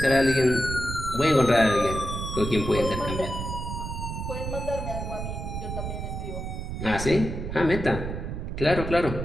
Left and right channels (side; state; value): right; noise; rumble, 5 dB below the sound